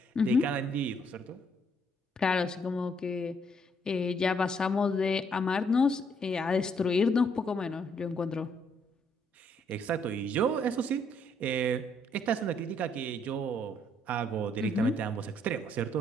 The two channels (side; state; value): both; normal; correlation 0.70